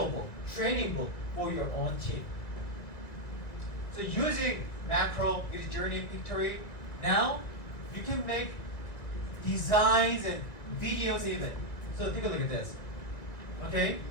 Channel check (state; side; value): late; right; 1.8 ms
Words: book, training book for your own team. So using macro, with journey, pictory, now you can make designs and videos even. So take a look at this, okay?